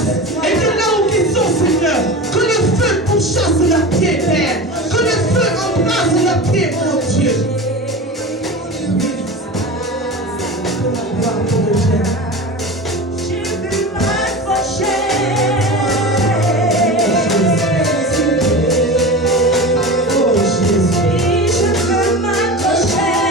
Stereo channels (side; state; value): both; normal; correlation 0.30